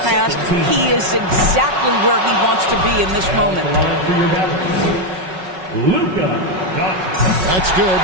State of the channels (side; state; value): left; late; 5.4 ms